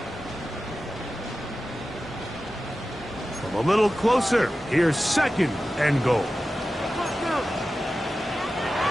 From a little closer, here's second and goal.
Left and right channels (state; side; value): normal; both; correlation 0.94